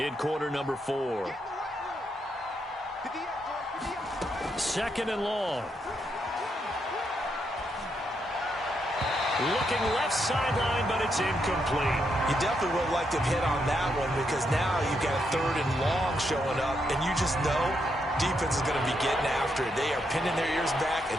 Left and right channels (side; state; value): both; normal; correlation 0.80